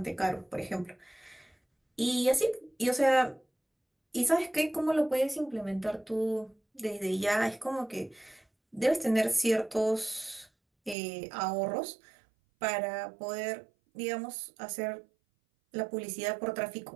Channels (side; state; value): left; drops out; at 11.0 s